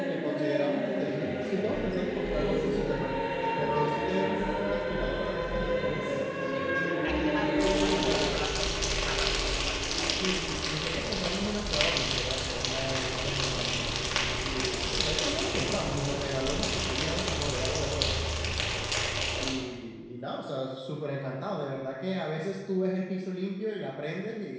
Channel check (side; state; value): both; identical; correlation 1.00